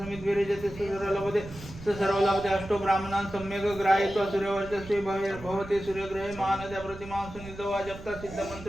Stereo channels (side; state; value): right; noise; rumble, 15 dB below the sound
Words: स सर्वलभते स सर्वलभते अष्टो ब्राह्मणान् सम्यक् ग्राहयित्वा सूर्यवर्चस्वी भवति सूर्यग्रहे महानद्या प्रतिमां सुनिधो जप्ता